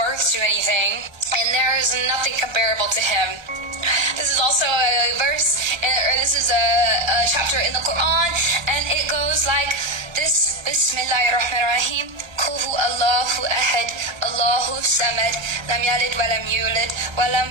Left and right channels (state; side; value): late; left; 1.1 ms